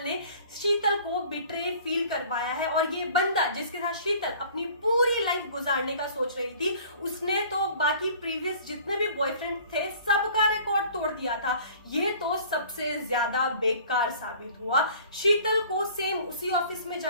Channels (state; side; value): inverted; both; correlation -0.49